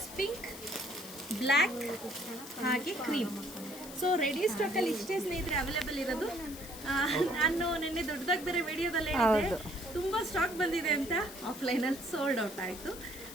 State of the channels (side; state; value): left; noise; hiss, 14 dB below the sound